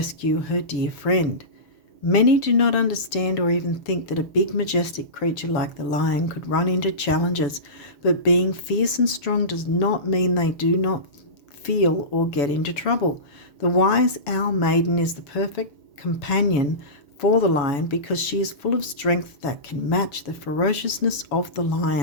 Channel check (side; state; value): right; late; 7.1 ms